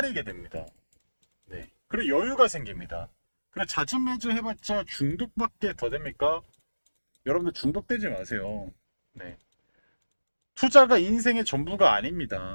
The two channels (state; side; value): inverted; both; correlation -1.00